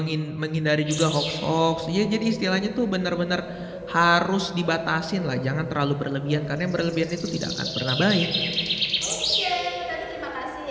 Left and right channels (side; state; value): both; identical; correlation 1.00